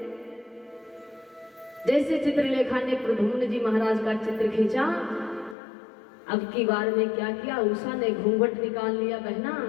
जैसे चित्रलेखा ने प्रद्युम्न जी महाराज का चित्र खींचा, अब की बार में क्या किया, उषा ने घूंघट निकाल लिया। बहना,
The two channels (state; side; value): drops out; right; at 5.6 s